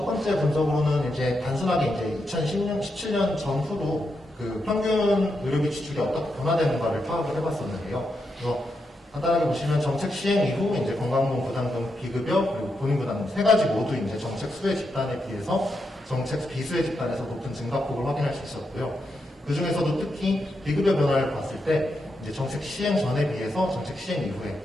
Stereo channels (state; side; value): normal; both; correlation 0.84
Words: 번째 분석으로는 이제 단순하게 이제 2017년 전후로 그 평균 의료비 지출이 어떻게 변화되는가를 파악을 해봤었는데요. 그래서 간단하게 보시면 정책 시행 이후 이제 건강보험 부담금 비급여 그리고 본인 부담금 세 가지 모두 이제 정책 수혜 집단에 비해서 정책 비수혜 집단에서 높은 증가폭을 확인할 수 있었고요. 그 중에서도 특히 비급여 변화를 봤을 때 이제 정책 시행 전에 비해서 정책 시행 이후에